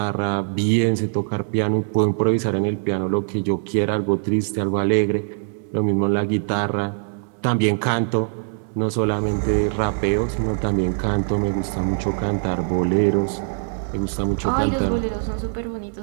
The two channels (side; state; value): left; silent; 61 dB below the other